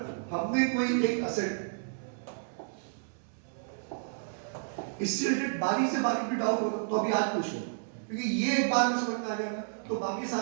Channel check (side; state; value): left; silent; 57 dB below the other